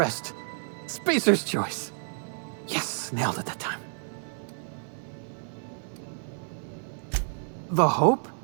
Spacer's choice. Yes, nailed it that time. The Hope?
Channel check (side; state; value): left; silent; 58 dB below the other